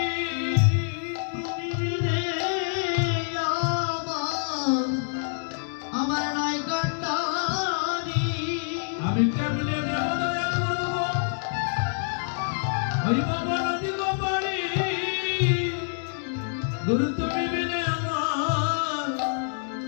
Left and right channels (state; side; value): silent; right; 60 dB below the other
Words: তুমি বিনে আমার নাই কান্ডারি আমি কেমনে দেব দয়া করব ওই বাবা নদী গোপাড়ি গুরু তুমি বিনে